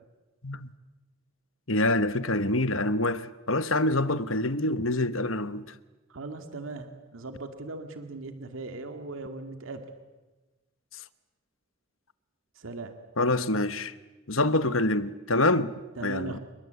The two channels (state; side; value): normal; both; correlation 0.03